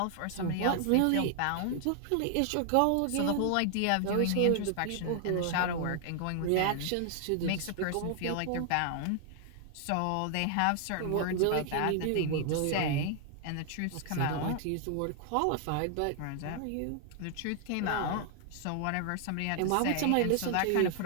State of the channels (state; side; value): different; both; correlation 0.00